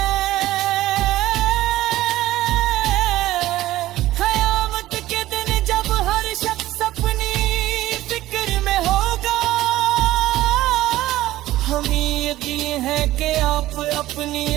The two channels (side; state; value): left; quieter; 15.6 dB